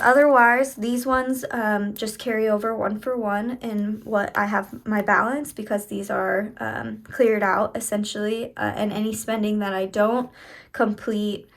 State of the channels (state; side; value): identical; both; correlation 1.00